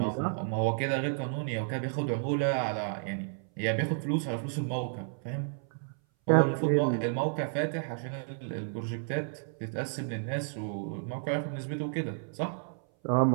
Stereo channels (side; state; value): left; silent; 57 dB below the other